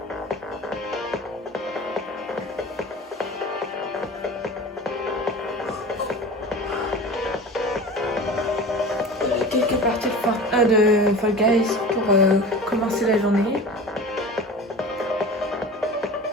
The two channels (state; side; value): normal; both; correlation 0.36